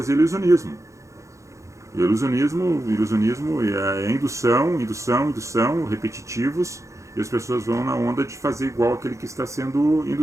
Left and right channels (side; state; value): left; late; 0.15 ms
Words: ilusionismo. Ilusionismo é indução, repetitivos, e as pessoas vão na onda de fazer igual aquele que está sendo